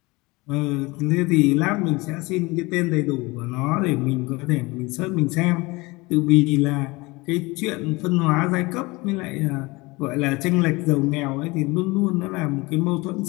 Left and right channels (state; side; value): quieter; right; 23.6 dB